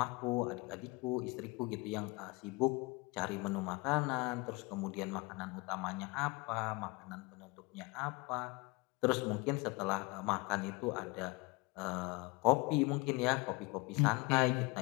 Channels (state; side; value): quieter; right; 25.3 dB